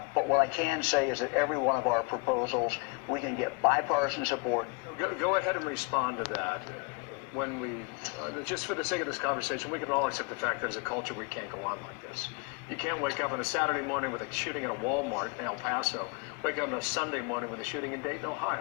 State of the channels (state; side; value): quieter; right; 31.6 dB